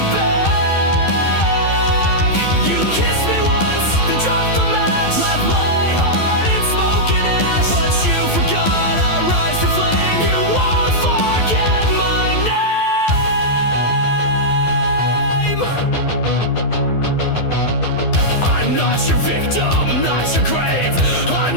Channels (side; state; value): right; late; 12 ms